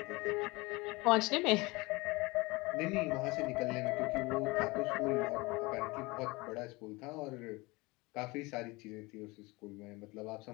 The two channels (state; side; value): quieter; right; 23.8 dB